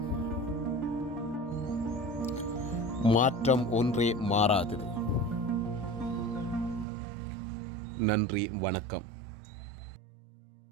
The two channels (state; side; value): drops out; left; at 6.9 s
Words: மாற்றம் ஒன்றே மாறாதது. நன்றி, வணக்கம்.